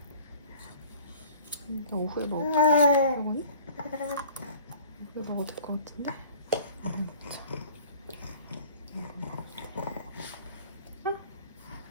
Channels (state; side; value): inverted; both; correlation -0.47